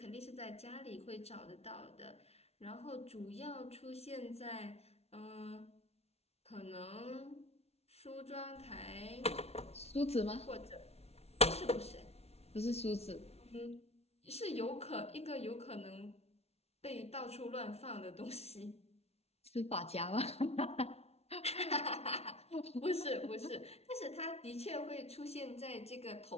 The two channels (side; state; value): right; late; 0.31 ms